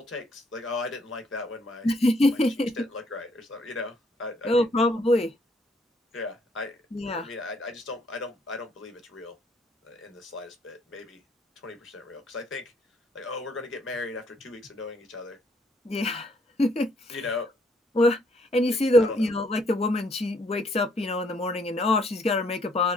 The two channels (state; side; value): normal; both; correlation 0.68